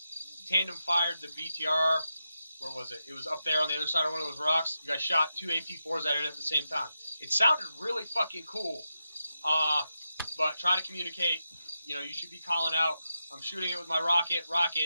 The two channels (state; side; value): inverted; both; correlation -0.87